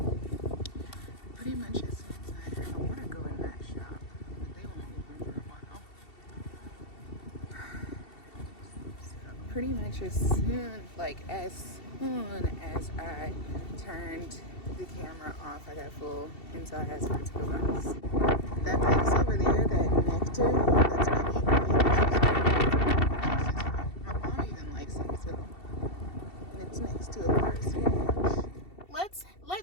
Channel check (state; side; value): late; right; 2.7 ms